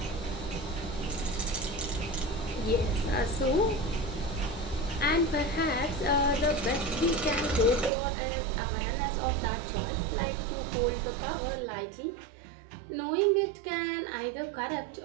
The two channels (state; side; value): drops out; left; at 7.9 s